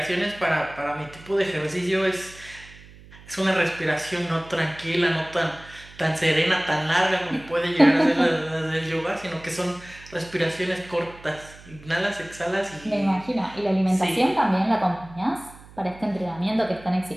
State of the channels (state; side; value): noise; right; hum, 21 dB below the sound